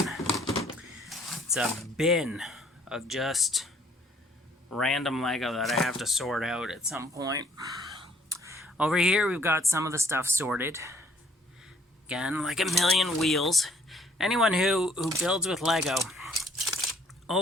It's a bin of just random Lego that I have to sort out at some point. Over here, we've got some of the stuff sorted. Again, like a million wheels. Anyone who builds with Lego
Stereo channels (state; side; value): normal; both; correlation 0.61